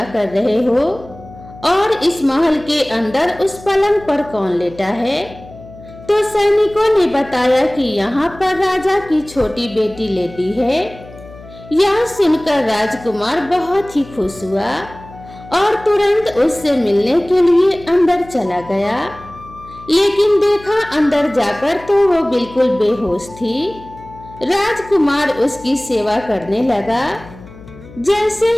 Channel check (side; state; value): left; noise; hum, 19 dB below the sound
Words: कर रहे हो और इस महल के अंदर उस पलंग पर कौन लेटा है? तो सैनिकों ने बताया कि यहाँ पर राजा की छोटी बेटी लेटी है। यह सुनकर राजकुमार बहुत ही खुश हुआ और तुरंत उससे मिलने के लिए अंदर चला गया। लेकिन देखा अंदर जाकर तो वो बिल्कुल बेहोश थी। राजकुमार उसकी सेवा करने लगा। जैसे